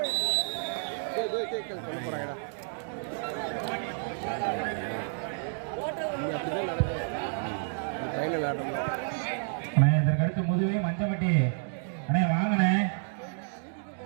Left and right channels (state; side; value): silent; left; digital silence